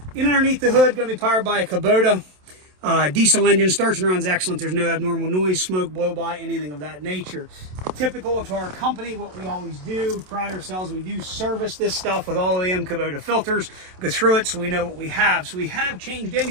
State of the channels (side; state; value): left; late; 27 ms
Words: In underneath the hood, going to be powered by a Kubota. Diesel engine, starts and runs excellent. There's no abnormal noise, smoke, blow by, anything of that nature. Typical to our company, what we always do, pride ourselves, we do service this stuff with all OEM Kubota filters, go through it so we know what we have. So we have changed